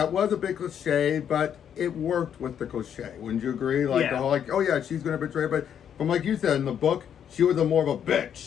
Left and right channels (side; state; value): right; quieter; 8.8 dB